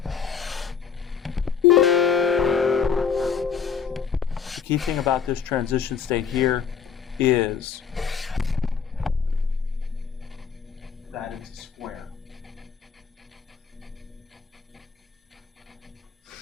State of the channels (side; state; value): right; quieter; 6.8 dB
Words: the key thing about this transition state here is that it's a square.